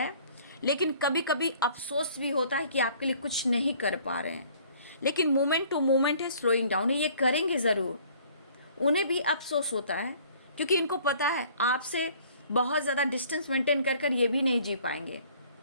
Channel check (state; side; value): inverted; both; correlation -0.56